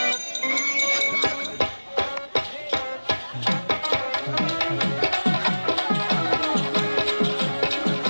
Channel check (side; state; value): both; inverted; correlation -1.00